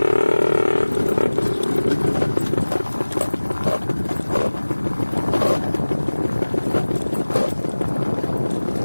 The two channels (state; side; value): inverted; both; correlation -1.00